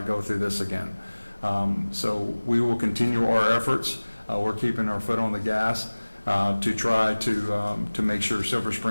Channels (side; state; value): both; inverted; correlation -1.00